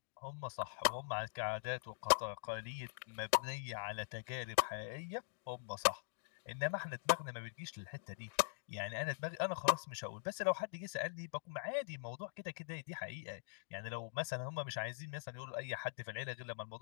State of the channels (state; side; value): silent; right; digital silence